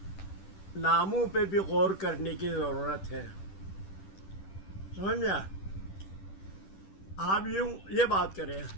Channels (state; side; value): late; right; 10 ms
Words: ناموں پہ بھی غور کرنے کی ضرورت ہے. سمجھا؟ آپ یوں یہ بات کریں،